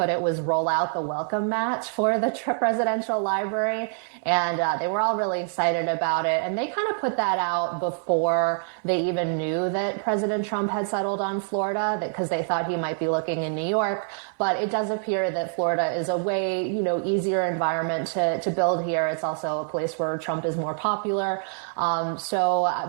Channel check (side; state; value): left; silent; 59 dB below the other